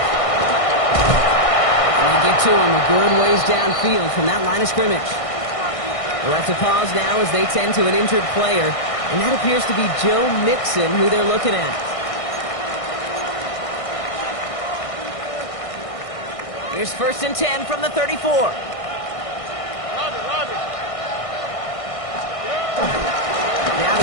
And they get to him a good ways downfield from that line of scrimmage. We'll have to pause now as they tend to an injured player. And that appears to be Joe Mixon who they're looking at. Here's 1st and 10 from the 34. Now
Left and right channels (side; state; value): right; late; 1.6 ms